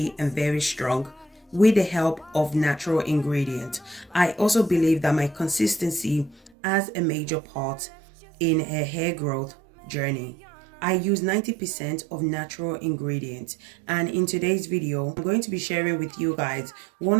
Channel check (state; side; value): drops out; left; at 6.5 s